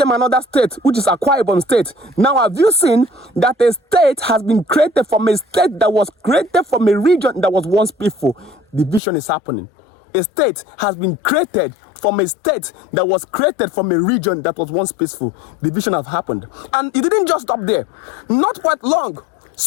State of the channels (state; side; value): drops out; right; at 9.0 s